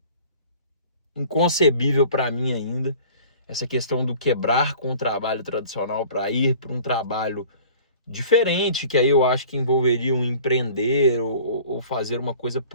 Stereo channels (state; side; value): inverted; both; correlation -0.47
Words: inconcebível para mim ainda. Essa questão do quebrar com o trabalho tradicional para ir para um trabalho diferente, que aí eu acho que envolveria um empreender ou fazer uma coisa